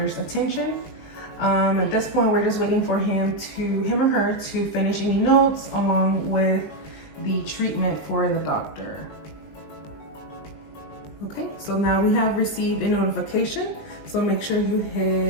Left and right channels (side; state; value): right; late; 20 ms